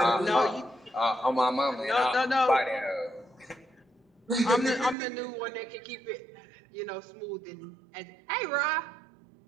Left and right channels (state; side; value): drops out; left; at 5.0 s